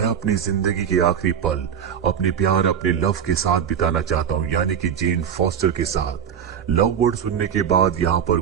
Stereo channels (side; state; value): left; quieter; 8.2 dB